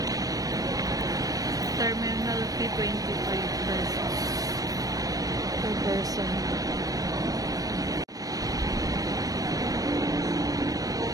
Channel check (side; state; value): left; late; 0.18 ms